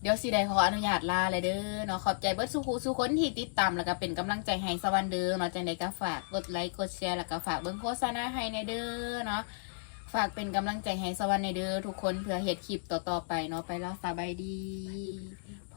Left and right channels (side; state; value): right; silent; digital silence